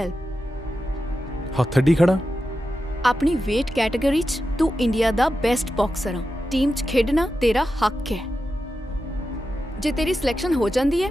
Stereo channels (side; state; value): both; normal; correlation 0.90